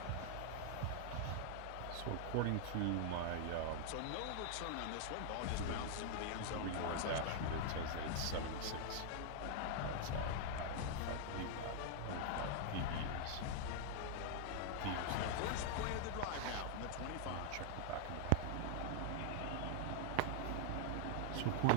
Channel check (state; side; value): different; both; correlation 0.00